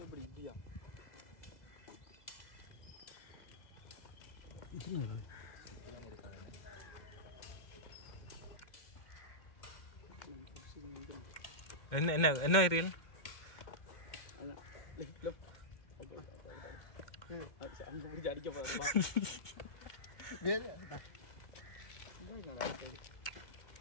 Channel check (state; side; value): late; right; 2.1 ms